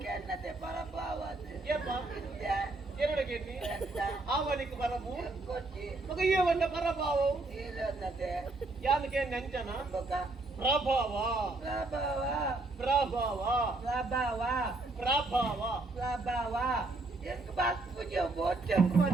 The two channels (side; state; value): left; quieter; 3.1 dB